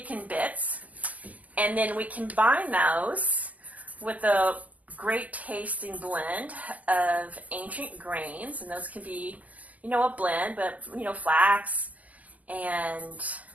bits. And then we combine those with a great tasting blend of ancient grains, and those can be, a blend, but, flax and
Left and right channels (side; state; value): left; late; 0.077 ms